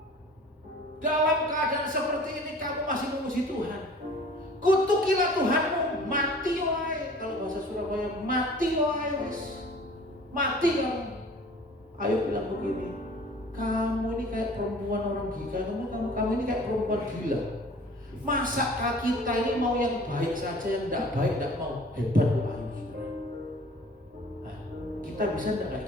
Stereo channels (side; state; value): both; normal; correlation 0.47